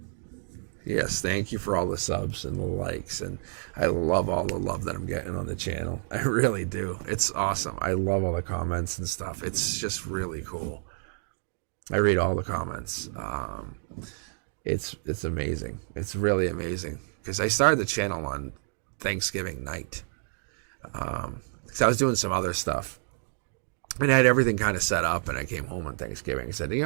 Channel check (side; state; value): left; silent; digital silence